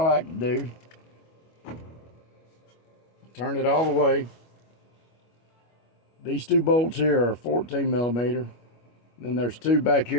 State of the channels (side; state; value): right; late; 25 ms